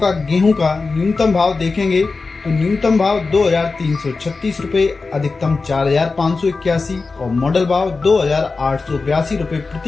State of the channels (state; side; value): quieter; right; 4.1 dB